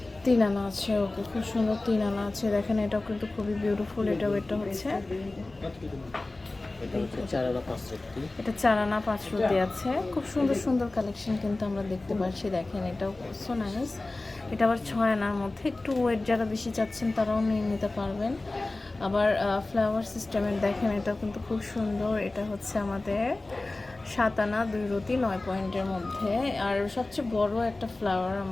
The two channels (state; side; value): quieter; right; 3.0 dB